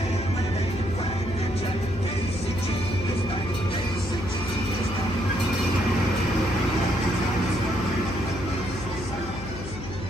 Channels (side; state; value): left; noise; hum, 9 dB below the sound